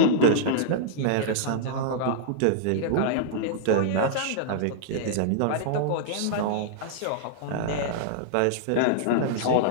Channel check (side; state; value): both; different; correlation -0.01